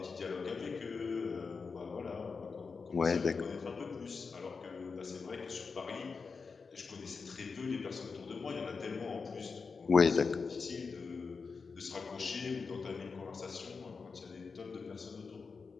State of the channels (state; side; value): quieter; right; 4.9 dB